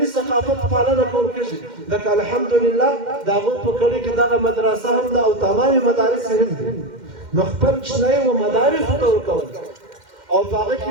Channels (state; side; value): late; left; 2.1 ms